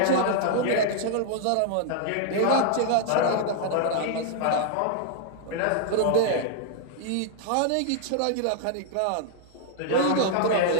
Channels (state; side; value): different; both; correlation -0.01